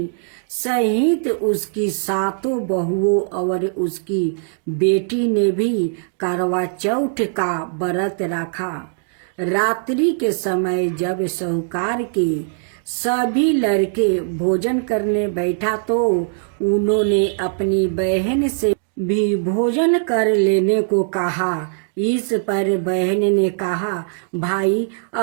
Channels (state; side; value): silent; left; 66 dB below the other